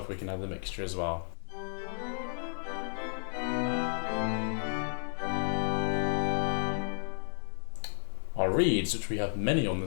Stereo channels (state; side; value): silent; right; digital silence